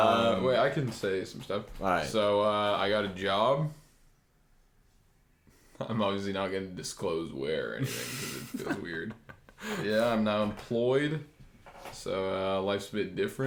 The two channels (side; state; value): both; identical; correlation 1.00